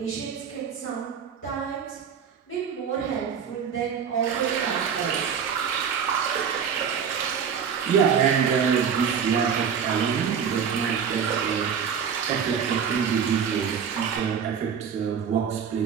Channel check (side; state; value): left; quieter; 7.3 dB